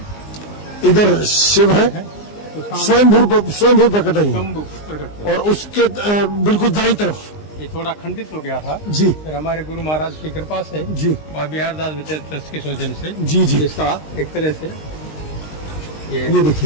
इधर शिव है, तो सामने स्वयंभू प्रकट है। शंभू प्रकट हुए। और उसके बिल्कुल दाईं तरफ ये थोड़ा खंडित हो गया था, जी फिर हमारे गुरु महाराज की कृपा से जी और बिहार दास विजय ट्रस्ट के सौजन्य से जी जी। इसका एक तरह से ये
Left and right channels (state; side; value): late; right; 19 ms